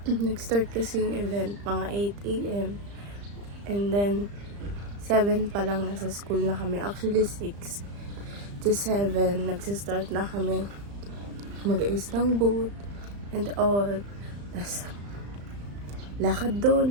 nag-start kasi yung event, mga 8 a.m. And then, 7 pa lang nasa school na kami. Actually, 6 to 7, nagsistart na kami mag-ayos ng booth and all. Tas, lakad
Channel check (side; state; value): left; late; 35 ms